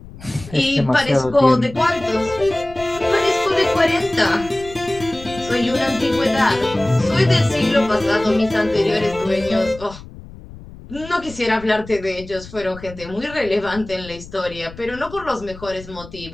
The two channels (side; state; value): left; noise; rumble, 17 dB below the sound